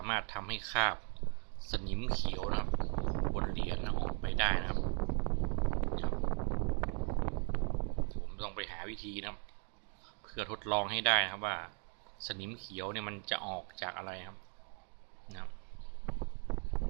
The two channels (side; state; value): left; quieter; 39.9 dB